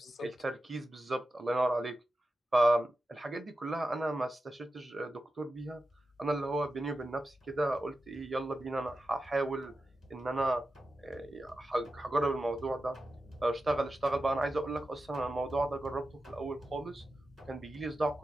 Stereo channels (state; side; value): normal; both; correlation 0.92